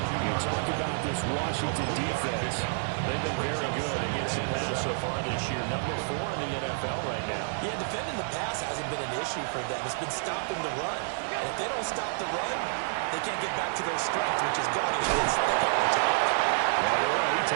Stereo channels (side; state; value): left; silent; digital silence